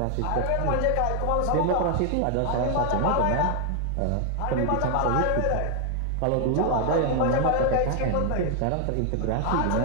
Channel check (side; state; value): both; different; correlation 0.00